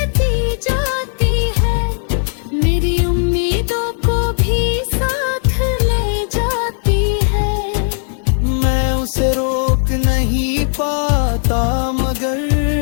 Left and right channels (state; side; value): silent; right; 65 dB below the other